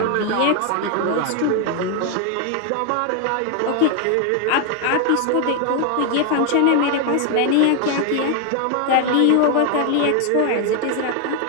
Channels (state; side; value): different; both; correlation 0.01